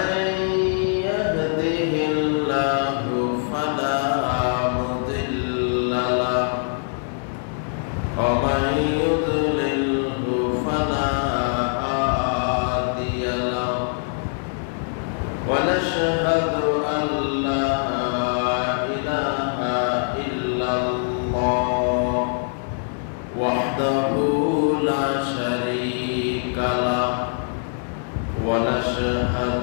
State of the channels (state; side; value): silent; right; digital silence